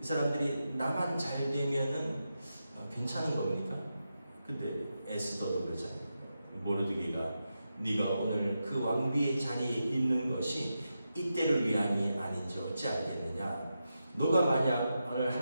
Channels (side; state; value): both; inverted; correlation -0.88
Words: 이 사람들이 나만 잘 되면은 괜찮은 겁니까? 근데 에스더도 그러잖아요. 모르드게가 네가 오늘 그 왕비의 자리에 있는 것이 이때를 위함이 아닌지 어찌 알겠느냐? 너가 만약 오늘